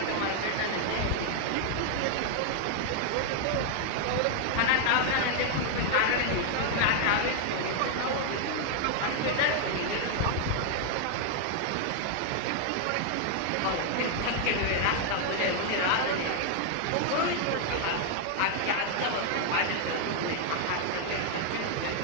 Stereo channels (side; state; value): both; different; correlation 0.00